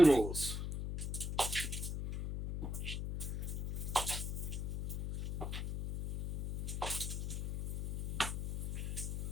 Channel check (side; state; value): left; noise; hum, 2 dB below the sound